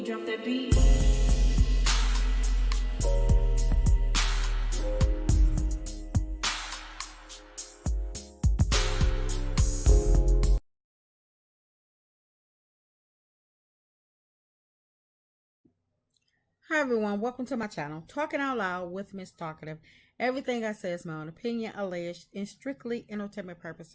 drop that beat. Hi everyone, welcome to my channel, Talking Out Loud with Miss Talkative. Everything I say is my own opinion, alleged, and strictly entertainment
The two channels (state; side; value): identical; both; correlation 1.00